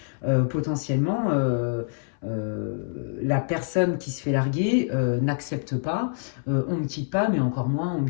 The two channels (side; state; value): right; silent; 61 dB below the other